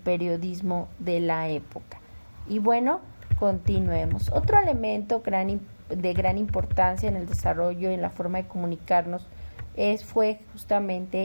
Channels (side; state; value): both; inverted; correlation -1.00